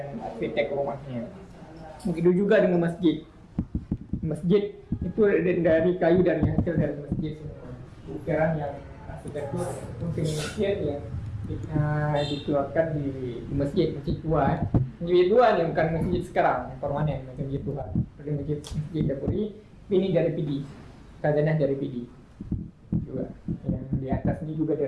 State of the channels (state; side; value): identical; both; correlation 1.00